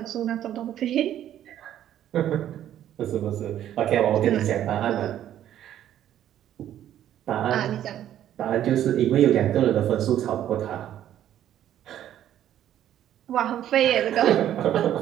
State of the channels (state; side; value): quieter; left; 11.4 dB